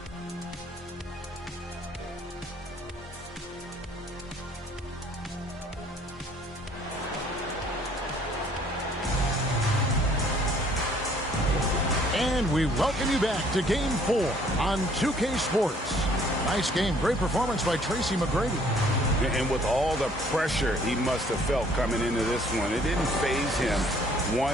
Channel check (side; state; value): both; normal; correlation 0.59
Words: And we welcome you back to Game 4 on 2K Sports. Nice game. Great performance by Tracy McGrady. And with all the pressure he must have felt coming into this one, it didn't faze him